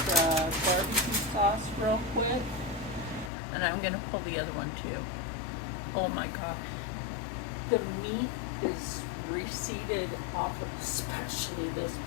barbecue sauce real quick. And I'm going to pull the other one too. Oh my god. The meat is receded off of, especially this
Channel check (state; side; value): drops out; right; at 3.3 s